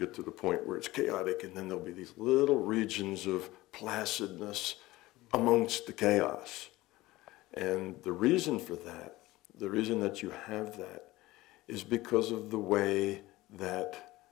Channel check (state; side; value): quieter; right; 18.5 dB